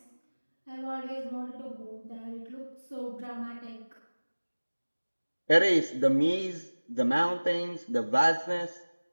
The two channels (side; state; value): both; inverted; correlation -1.00